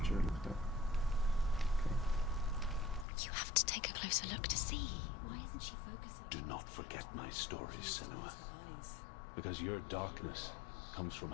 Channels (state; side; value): drops out; right; at 3.1 s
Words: lift up. Okay. You have to take a closer look to see. Why isn't she focusing? Do not forget my stories, Senua. Because your darkness comes from